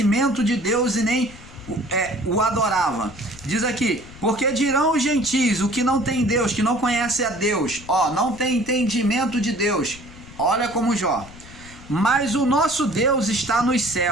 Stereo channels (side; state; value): left; noise; rumble, 18 dB below the sound